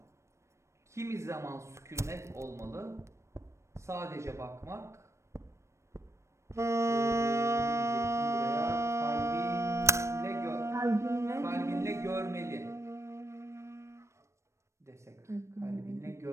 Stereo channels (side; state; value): left; late; 0.13 ms